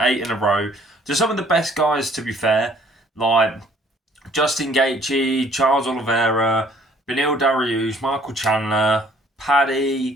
in a row to some of the best guys, to be fair, like Justin Gaethje, Charles Oliveira, Beneil Dariush, Michael Chandler,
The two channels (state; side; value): normal; both; correlation 0.58